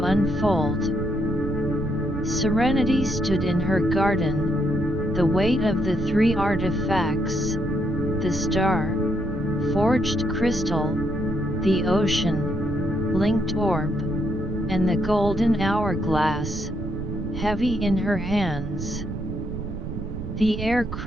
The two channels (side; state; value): right; noise; rumble, 6 dB below the sound